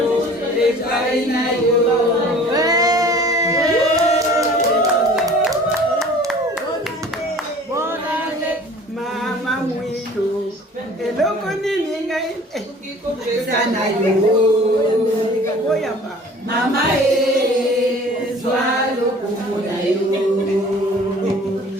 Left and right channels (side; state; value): both; normal; correlation 0.47